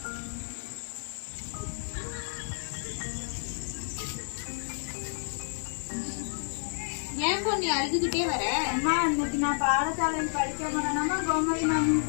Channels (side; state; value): right; silent; 56 dB below the other